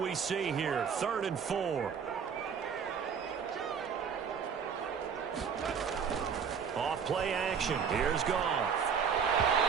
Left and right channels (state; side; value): quieter; left; 6.8 dB